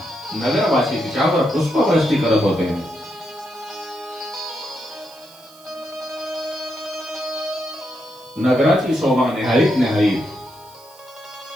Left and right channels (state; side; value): noise; right; hiss, 24 dB below the sound